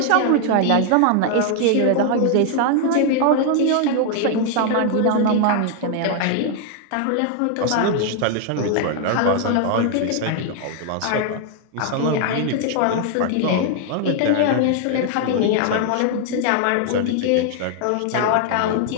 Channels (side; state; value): both; different; correlation 0.00